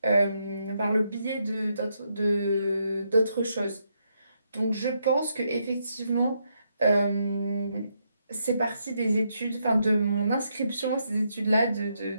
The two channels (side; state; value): both; inverted; correlation -0.78